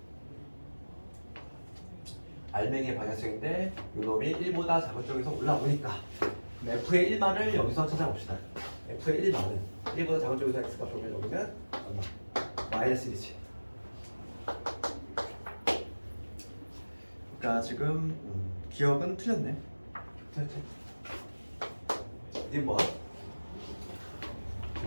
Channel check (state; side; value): inverted; both; correlation -1.00